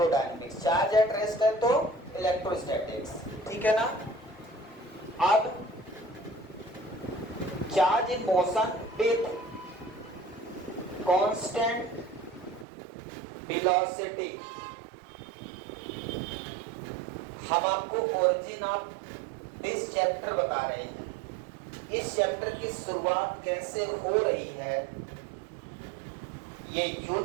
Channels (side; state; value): left; drops out; at 12.7 s